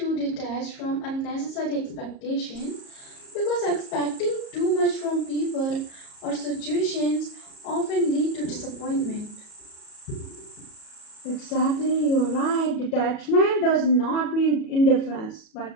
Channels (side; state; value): right; late; 37 ms